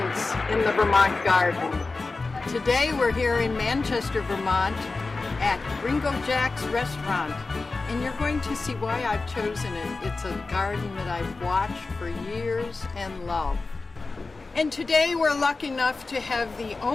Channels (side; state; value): right; quieter; 3.7 dB